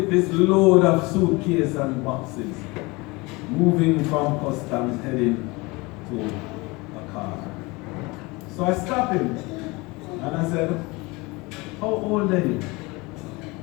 this load of suitcase and boxes, moving from customs heading to a car. So I stopped him and I said, how old are you?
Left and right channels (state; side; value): quieter; right; 24.6 dB